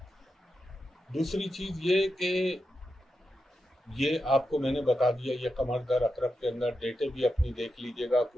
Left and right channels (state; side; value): normal; both; correlation 0.87